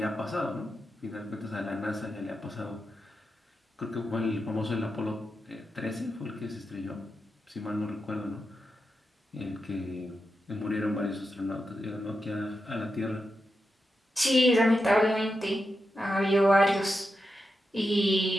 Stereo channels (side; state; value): both; normal; correlation 0.88